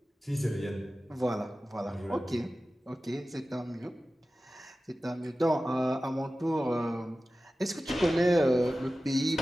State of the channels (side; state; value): both; normal; correlation 0.95